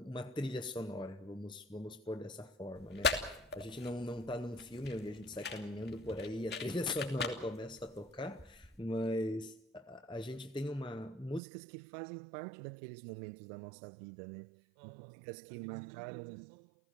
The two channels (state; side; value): drops out; left; at 11.4 s